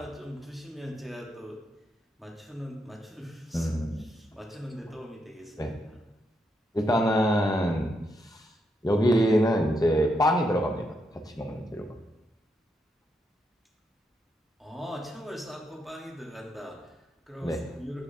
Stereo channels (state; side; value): normal; both; correlation 0.81